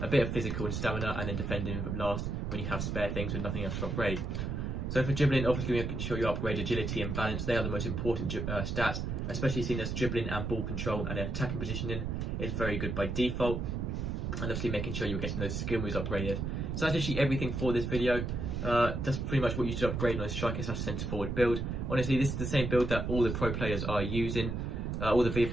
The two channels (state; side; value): noise; right; rumble, 2 dB below the sound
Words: a bit of physical and stamina, and then defending last when you have spare things with nothing else to upgrade. So for dribbling, obviously making sure you upgrade agility and balance. They are the most important stats, especially seeing as dribbling and ball control and attacking positioning is very good by default. And obviously making sure you're getting those skill moves upgraded. So that's actually everything for this video. That's pretty much what you should upgrade on a striker slash centre forward build. Honestly, this is the same build that all the pro players are using. All the